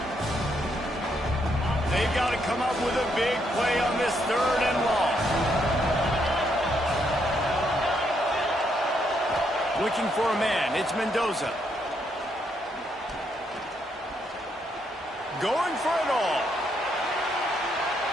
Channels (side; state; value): both; normal; correlation 0.75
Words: They've got to come up with a big play on this 3rd and long. Looking for a man. It's Mendoza. Going for it all.